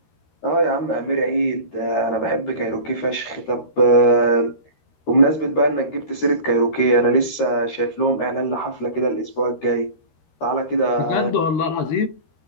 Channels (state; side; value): late; right; 13 ms